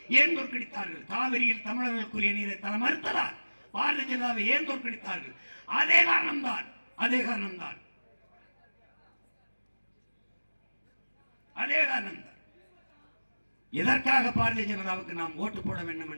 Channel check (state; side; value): inverted; both; correlation -1.00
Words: ஏன் தோற்கடித்தார்கள்? காவிரியில் தமிழர்களுக்குரிய நீரை தர மறுத்ததால். பாரதிய ஜனதாவை ஏன் தோற்கடித்தார்கள்? அதே காரணம்தான். எதற்காக பாரதிய ஜனதாவுக்கு நாம் ஓட்டு போட வேண்டும்